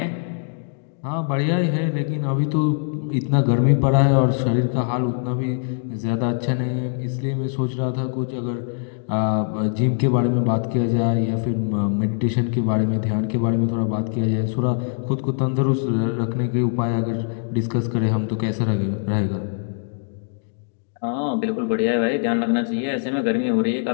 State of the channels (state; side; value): silent; right; digital silence